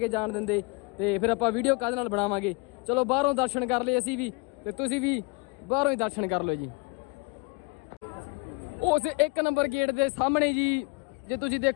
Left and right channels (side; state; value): right; quieter; 28.6 dB